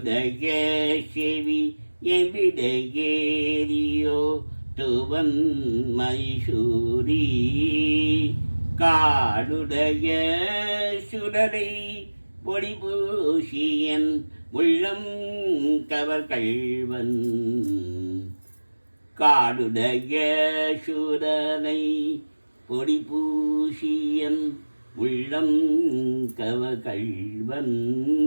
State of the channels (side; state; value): both; inverted; correlation -1.00